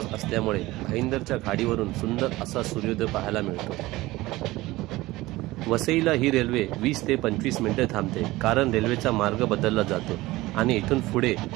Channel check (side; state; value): left; quieter; 18.9 dB